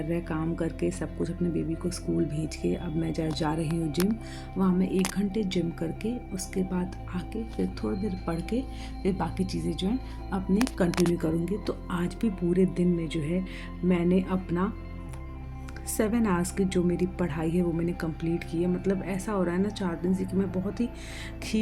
काम करके सब कुछ अपने बेबी को स्कूल भेज के अब मैं जा रही हूँ जिम। वहाँ मैं 1 घंटे जिम करके उसके बाद आके फिर थोड़ी देर पढ़ के फिर बाकी चीज़ें जो हैं अपने कंटिन्यू करूँगी। तो आज भी पूरे दिन में जो है मैंने अपना 7 आवर्स की जो मेरी पढ़ाई है वो मैंने कंप्लीट की है। मतलब ऐसा हो रहा है ना 4 दिन से कि मैं बहुत ही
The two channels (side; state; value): both; identical; correlation 1.00